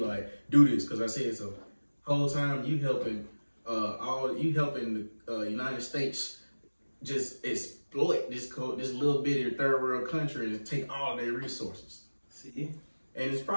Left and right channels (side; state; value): both; inverted; correlation -1.00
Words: do this, cause I said so. Whole time you helping the United States just exploit this little bitty third world country and take all their resources. See? And it's